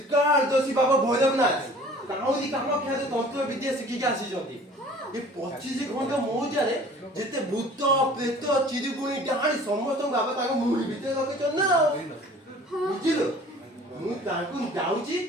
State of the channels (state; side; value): normal; both; correlation 0.48